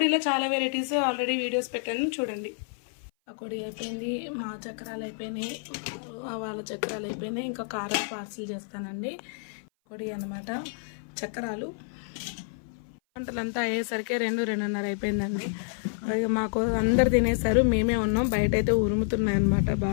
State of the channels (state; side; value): silent; right; 56 dB below the other